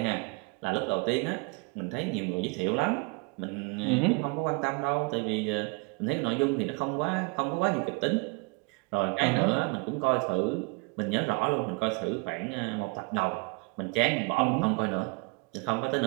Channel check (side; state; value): left; quieter; 30.3 dB